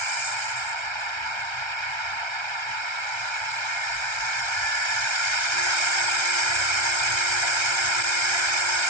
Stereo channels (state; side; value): late; right; 1.3 ms